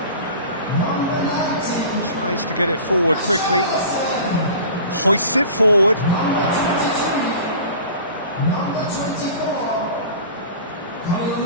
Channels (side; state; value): both; inverted; correlation -0.40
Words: Tries to get it forward quickly. Hoists it forward.